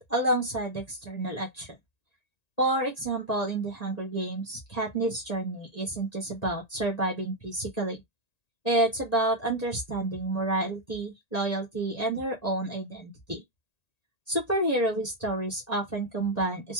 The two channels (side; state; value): right; late; 1.8 ms